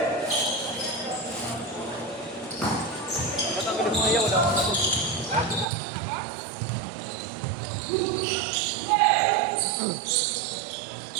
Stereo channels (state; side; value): drops out; left; at 5.7 s